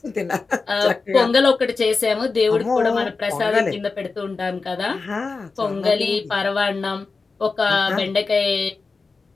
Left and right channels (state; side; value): quieter; right; 4.3 dB